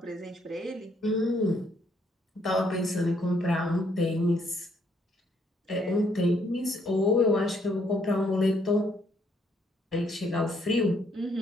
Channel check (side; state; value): both; normal; correlation 0.69